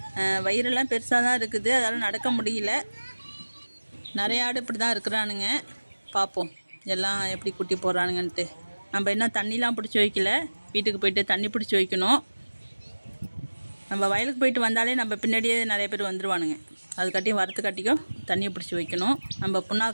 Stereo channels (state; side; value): inverted; both; correlation -1.00